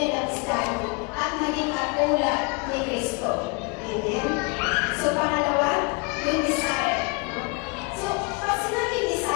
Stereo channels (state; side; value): quieter; right; 29.9 dB